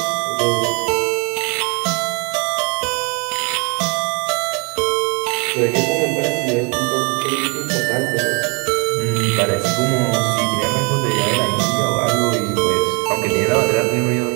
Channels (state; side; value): quieter; left; 33.0 dB